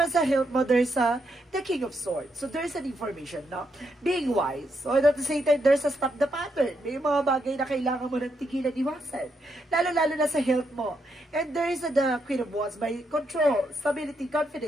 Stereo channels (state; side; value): normal; both; correlation 0.79